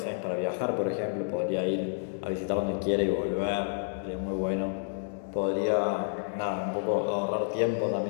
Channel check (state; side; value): silent; right; digital silence